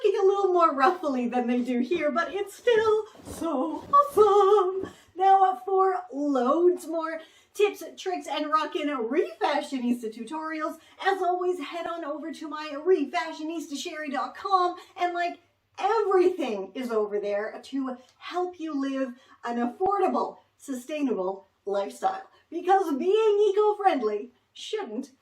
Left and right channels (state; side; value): identical; both; correlation 1.00